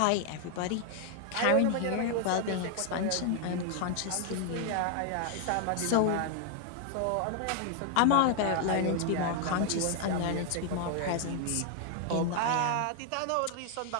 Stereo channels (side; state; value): both; different; correlation 0.00